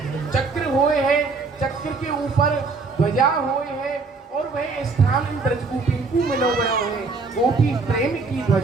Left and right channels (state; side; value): quieter; left; 4.2 dB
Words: चक्र हुए है, चक्र के ऊपर ध्वजा हुए है, और वह स्थान इन ब्रजगोपीन को मिलो गए है, गोपी प्रेम की